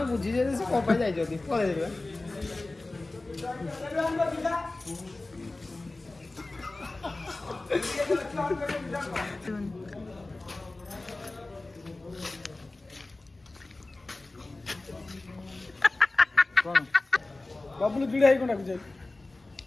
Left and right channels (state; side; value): quieter; right; 3.0 dB